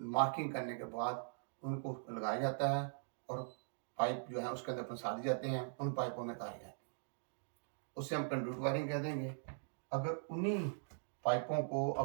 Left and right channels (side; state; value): left; silent; digital silence